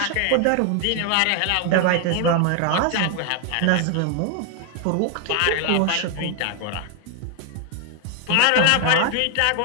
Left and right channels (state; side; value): different; both; correlation 0.00